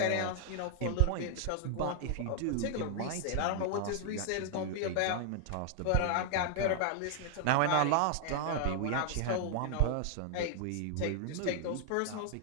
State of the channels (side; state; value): both; different; correlation 0.00